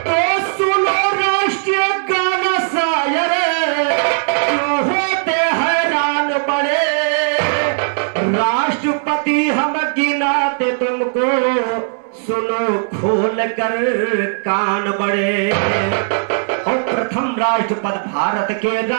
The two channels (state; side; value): silent; left; digital silence